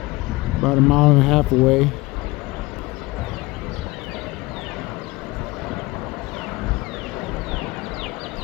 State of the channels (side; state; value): right; quieter; 21.7 dB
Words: About a mile and a half away.